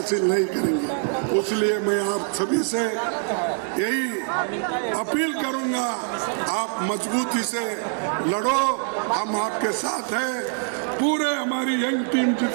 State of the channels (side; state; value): left; silent; 57 dB below the other